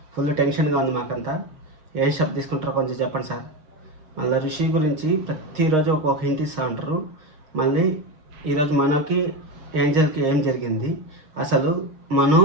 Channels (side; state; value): left; late; 6.4 ms